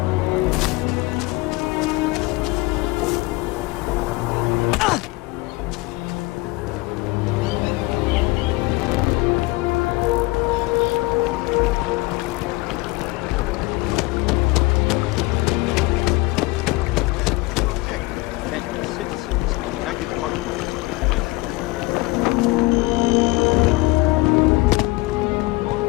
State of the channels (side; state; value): right; quieter; 22.4 dB